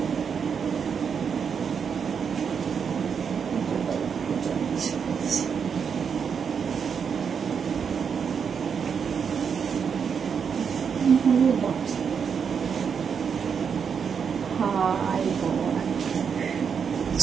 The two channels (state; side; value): quieter; left; 6.7 dB